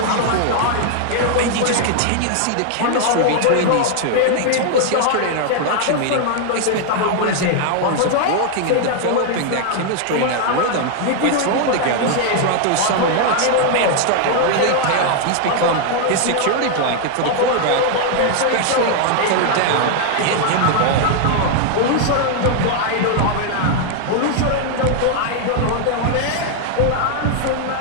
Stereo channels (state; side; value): different; both; correlation 0.00